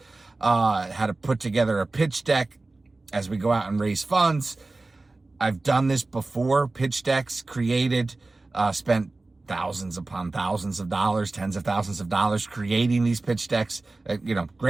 had to put together a pitch deck as we go out and raise funds. I've done this before, pitch decks created, spent thousands upon thousands of dollars, tens of thousands of dollars creating these pitch decks,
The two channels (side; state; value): left; quieter; 3.2 dB